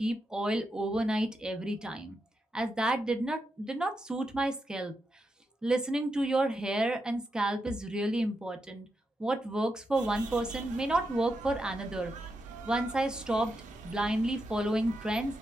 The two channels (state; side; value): normal; both; correlation 0.85